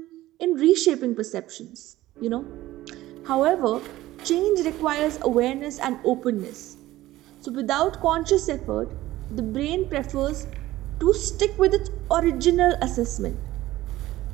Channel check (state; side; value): quieter; left; 16.1 dB